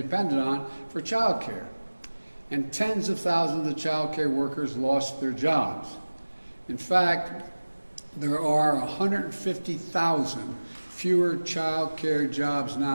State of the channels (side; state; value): both; inverted; correlation -1.00